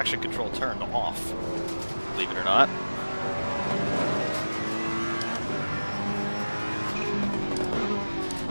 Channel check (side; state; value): both; inverted; correlation -1.00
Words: control turned off, believe it or not.